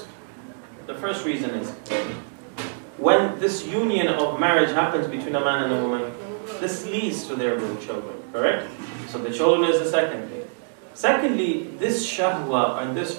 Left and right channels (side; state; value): left; silent; digital silence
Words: reason is when this union of marriage happens between a man and a woman, this leads to their real children, correct? So the children is the second thing. Secondly, this shahwa and